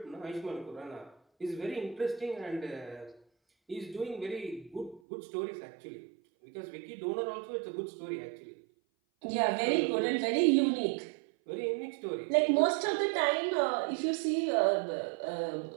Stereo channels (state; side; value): drops out; left; at 5.0 s